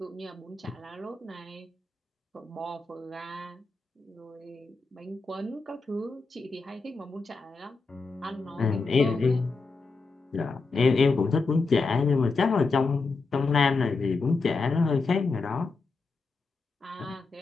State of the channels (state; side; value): quieter; right; 4.0 dB